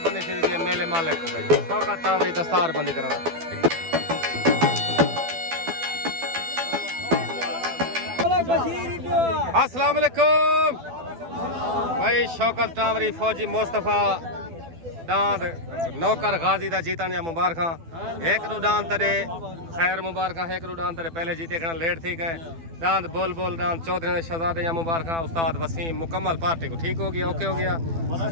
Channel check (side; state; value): left; late; 12 ms